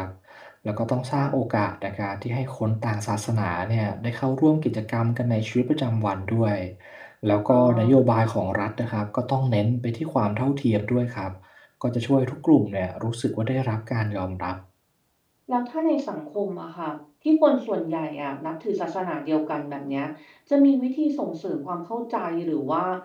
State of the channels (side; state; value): both; identical; correlation 1.00